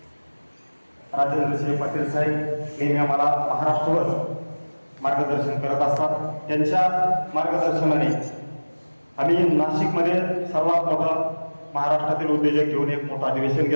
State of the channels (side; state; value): both; inverted; correlation -1.00